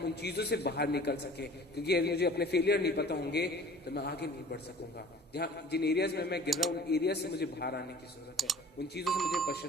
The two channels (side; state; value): both; normal; correlation 0.47